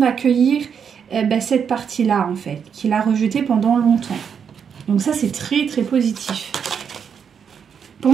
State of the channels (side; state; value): left; quieter; 7.2 dB